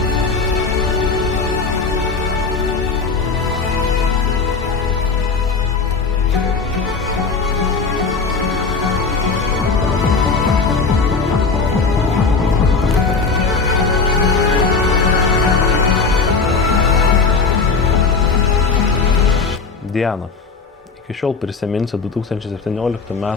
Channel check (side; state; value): right; quieter; 4.6 dB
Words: Diana, iki šiol prisiminsiu 2017